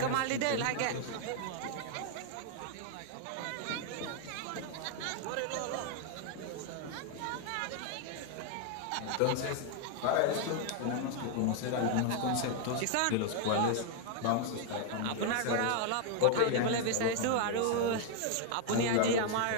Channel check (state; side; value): different; both; correlation 0.00